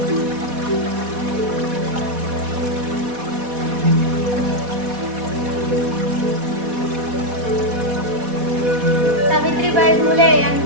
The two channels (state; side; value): late; left; 4.1 ms